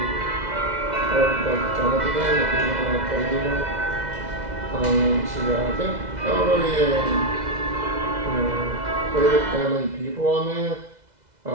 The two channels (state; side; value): late; left; 2.0 ms